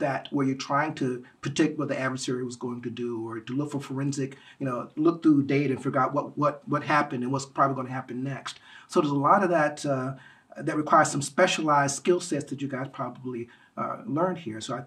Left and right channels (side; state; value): both; identical; correlation 1.00